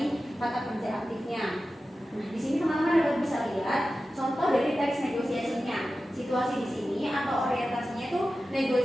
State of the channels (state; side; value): normal; both; correlation 0.94